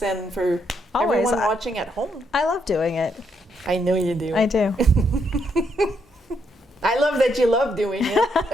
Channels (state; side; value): normal; both; correlation 0.76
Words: and for Always. everyone watching at home. I love doing it. I know you do. I do. I love that you love doing